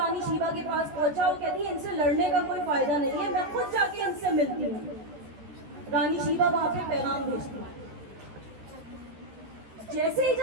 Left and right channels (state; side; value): late; left; 13 ms